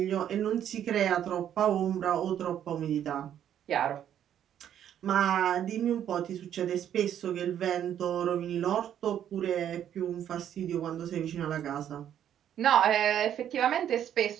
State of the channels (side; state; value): left; quieter; 10.1 dB